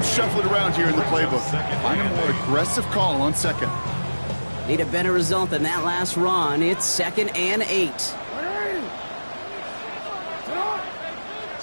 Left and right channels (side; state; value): both; inverted; correlation -1.00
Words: shuffling around here in the playbook. Find a more aggressive call on second. Need a better result than that last run. It's 2nd and 8.